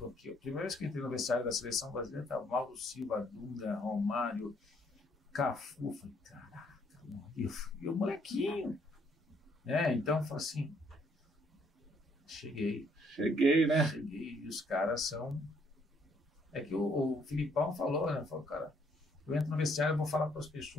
aqui. A primeira vez que eu entrei no vestiário da seleção brasileira, estava Mauro Silva, Dunga, Romário, Cafu. Falei, caraca, e o molequinho. Então eu falei assim, cheguei, né? Cheguei, e os caras são... É que o Filipão falou, né? Falou, cara, eu entro no vestiário, eu vou falar para as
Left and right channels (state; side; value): normal; both; correlation 0.67